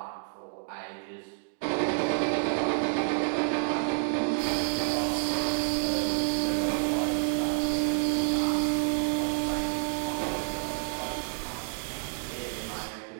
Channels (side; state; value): left; silent; 58 dB below the other